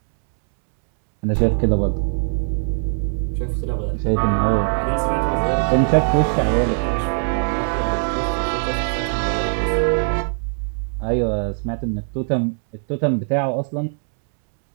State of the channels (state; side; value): silent; left; 65 dB below the other